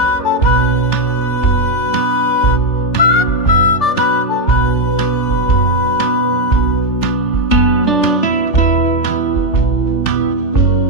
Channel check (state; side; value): late; right; 3.4 ms